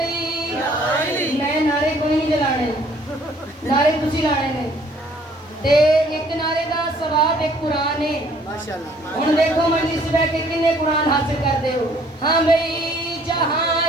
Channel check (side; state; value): both; normal; correlation 0.60